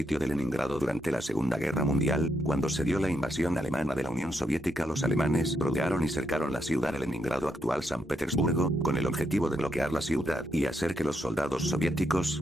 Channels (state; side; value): normal; both; correlation 0.80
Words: de Leningrado durante la Segunda Guerra Mundial, cuando se dio la invasión alemana de la Unión Soviética. Los alemanes rodearon y cercaron la ciudad de Leningrado, actual San Petersburgo, con el objetivo de bloquear la ciudad y hacer que los soldados